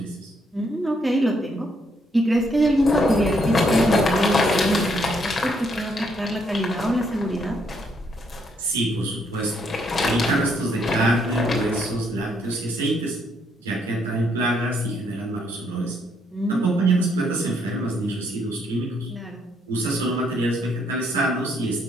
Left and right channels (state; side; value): normal; both; correlation 0.72